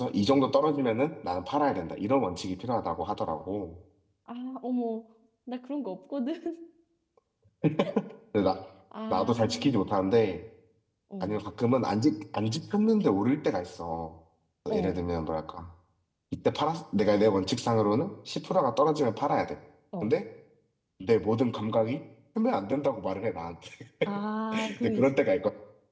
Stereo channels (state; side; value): identical; both; correlation 1.00